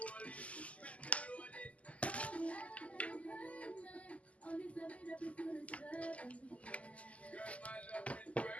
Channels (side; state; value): right; late; 0.067 ms